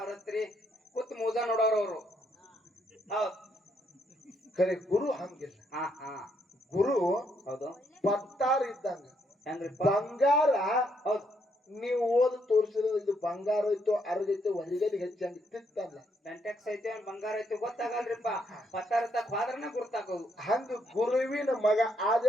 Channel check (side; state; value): both; normal; correlation 0.74